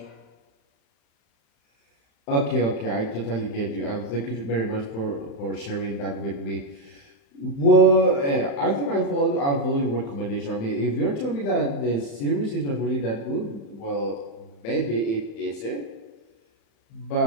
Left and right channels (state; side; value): late; right; 35 ms